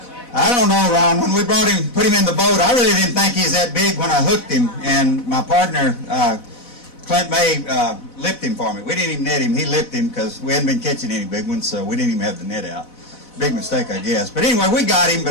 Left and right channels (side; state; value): right; late; 4.0 ms